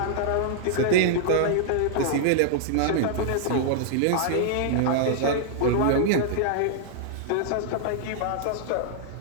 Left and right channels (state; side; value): different; both; correlation -0.01